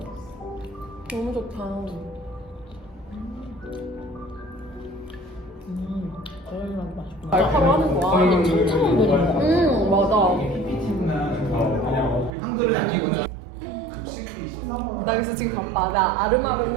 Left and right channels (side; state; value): left; drops out; at 12.3 s